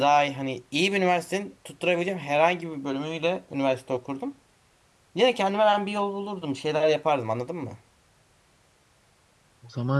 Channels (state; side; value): identical; both; correlation 1.00